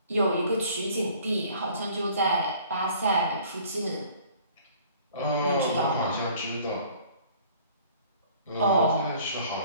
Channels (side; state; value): both; inverted; correlation -0.53